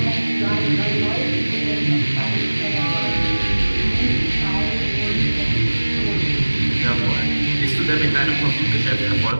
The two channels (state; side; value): inverted; both; correlation -1.00